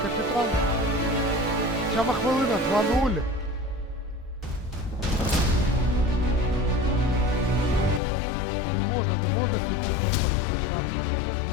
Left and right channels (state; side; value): drops out; right; at 8.0 s